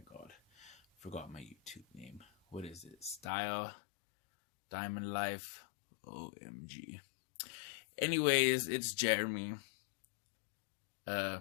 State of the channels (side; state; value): right; drops out; at 3.3 s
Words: god, forgot my YouTube name. What is it? Style Diamond Life. OMG. Anyways, it's Jeremy.